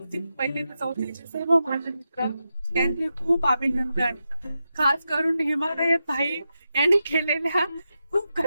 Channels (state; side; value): inverted; both; correlation -0.88